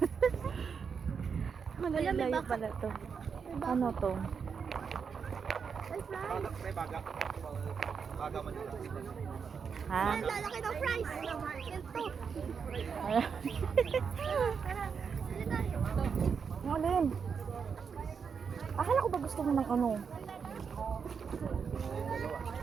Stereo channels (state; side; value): quieter; left; 6.2 dB